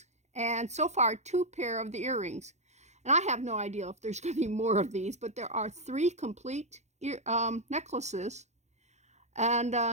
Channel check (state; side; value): late; left; 0.33 ms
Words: and so far 2 pair of the earrings. And I have no idea if there's going to be more of these, but there are 3 complete necklaces,